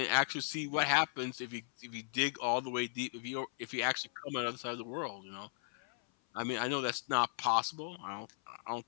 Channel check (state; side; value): silent; right; 53 dB below the other